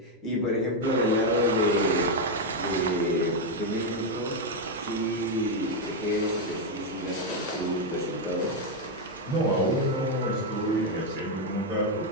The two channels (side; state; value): both; normal; correlation 0.03